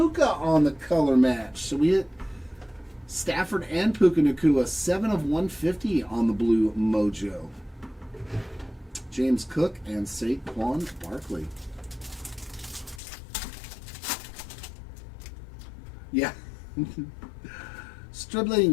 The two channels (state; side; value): drops out; right; at 13.0 s